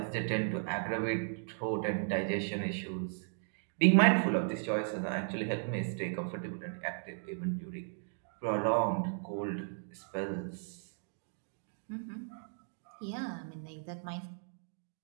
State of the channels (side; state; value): left; silent; digital silence